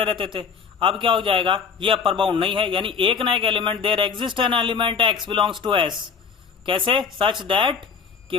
रहते थे। अब क्या हो जाएगा, ये अपर बाउंड नहीं है, यानी एक ना एक element, there exist an element x belongs to S, कैसे, सच दैट कि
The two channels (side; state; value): right; quieter; 6.2 dB